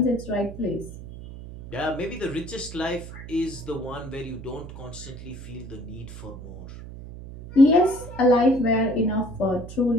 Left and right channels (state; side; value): noise; right; hum, 13 dB below the sound